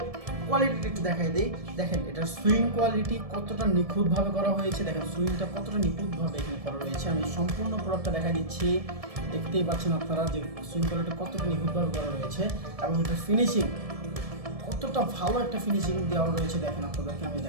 কোয়ালিটিটা একটু দেখাই দিই। দেখেন এটার সুইং কোয়ালিটি কতটা নিখুঁতভাবে করা হয়েছে, দেখেন সুইংটা কতটা নিখুঁতভাবে এখানে করা রয়েছে। আমি সম্পূর্ণ প্রোডাক্টটা দেখাই দিচ্ছি, দেখতেই পাচ্ছেন আপনারা যে সুইং কোয়ালিটি কতটা নিখুঁতভাবে করা রয়েছে এবং এটার ফিনিশিং কতটা ভালো একটা ফিনিশিং দেওয়া রয়েছে। দেখেন আপনাদেরকে আমি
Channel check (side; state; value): left; late; 1.7 ms